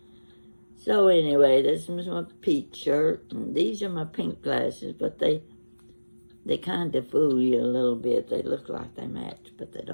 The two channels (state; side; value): inverted; both; correlation -1.00